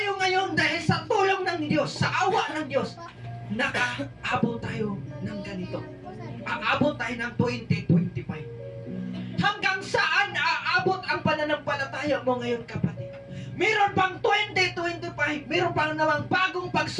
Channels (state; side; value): identical; both; correlation 1.00